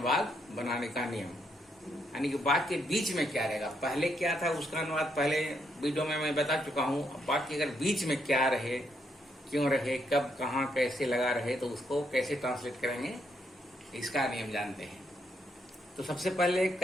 बनाने का नियम, यानी कि वाक्य के बीच में क्या रहेगा। पहले क्या था उसका अनुवाद पहले वीडियो में मैं बता चुका हूँ। वाक्य अगर बीच में क्या रहे, क्यों रहे, कब, कहाँ, कैसे लगा रहे तो उसको कैसे ट्रांसलेट करेंगे, इसका नियम जानते हैं। तो सबसे पहले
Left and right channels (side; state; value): both; normal; correlation 0.76